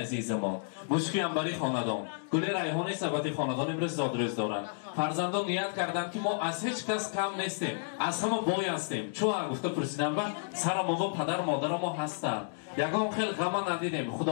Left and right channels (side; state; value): right; silent; digital silence